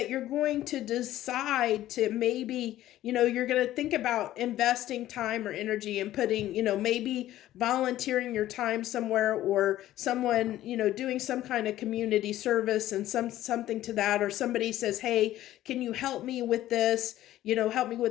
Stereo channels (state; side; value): quieter; right; 14.0 dB